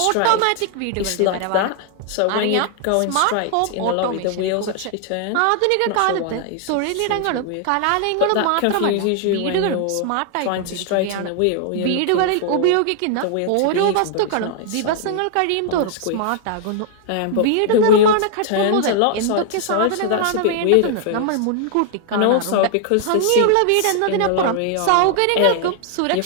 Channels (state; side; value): different; both; correlation 0.00